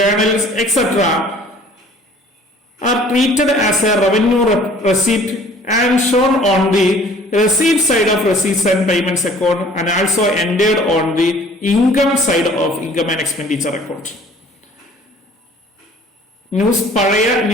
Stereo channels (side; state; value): both; normal; correlation 0.52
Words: etc. are treated as a revenue receipt and shown on the receipt side of receipts and payments account and also entered on the income side of income and expenditure account. പഴയ